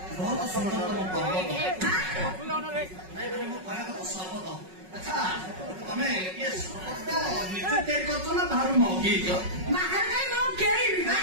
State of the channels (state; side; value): late; left; 5.4 ms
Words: ବହୁତ ସୁନ୍ଦର ତମ ପର୍ବ ଆଚ୍ଛା ତମେ ଇଏ ଶପଥ ନିଜେ ତିଆରି କରୁଛ ନା ବାହାରୁ ମଗେଇଛ? ବାହାରେ ମୁଁ କେଳିବି ବା